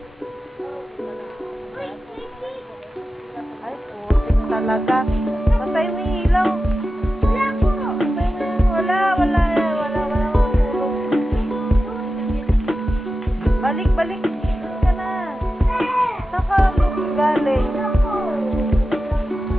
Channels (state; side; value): normal; both; correlation 0.93